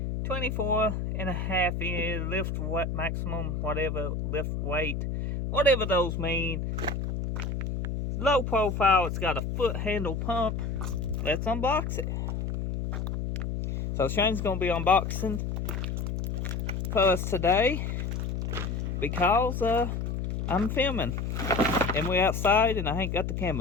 24.5 inch lift weight, maximum, whatever, lift weight, whatever those mean. Low profile, it's got a foot handle pump. Let's unbox it. So Shane's gonna be unboxing for us today because I'm filming and we're outside and I ain't got the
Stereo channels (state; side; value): noise; left; hum, 2 dB below the sound